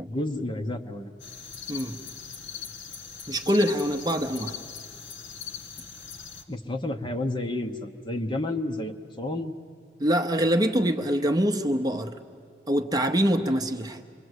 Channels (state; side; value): normal; both; correlation 0.72